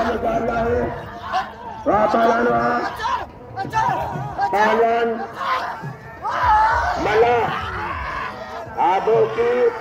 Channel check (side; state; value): both; identical; correlation 1.00